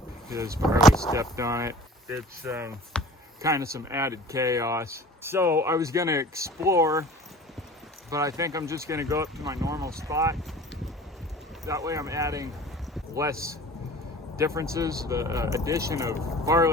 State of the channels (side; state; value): both; normal; correlation 0.43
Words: because Barley stepped on it. It's kind of some added chaos. So I was gonna explore, but I think I'm just gonna go up to my normal spot. That way I'm adding less differences. The addition of